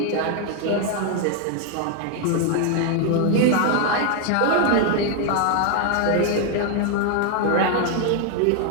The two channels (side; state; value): both; different; correlation 0.00